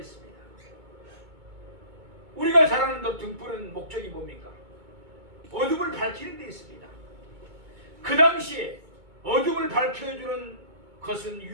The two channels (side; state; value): left; late; 2.2 ms